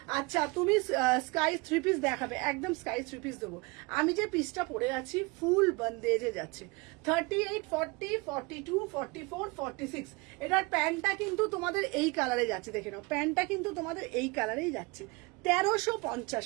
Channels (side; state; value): left; quieter; 26.3 dB